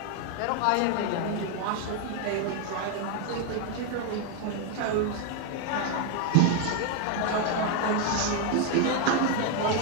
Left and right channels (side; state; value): both; different; correlation 0.01